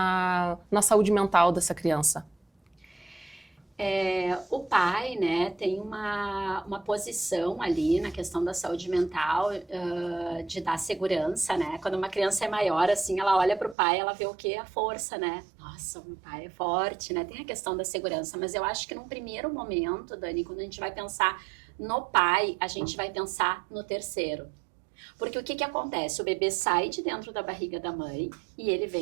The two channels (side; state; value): left; drops out; at 13.8 s